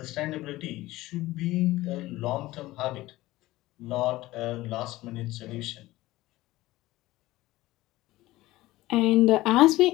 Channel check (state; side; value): quieter; right; 17.7 dB